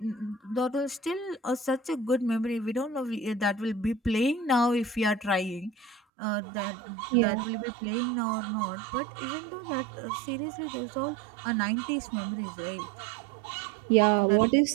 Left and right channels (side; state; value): left; drops out; at 6.0 s